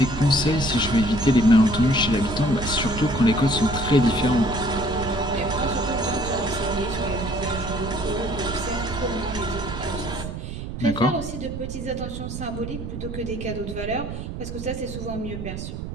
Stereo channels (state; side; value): noise; right; rumble, 7 dB below the sound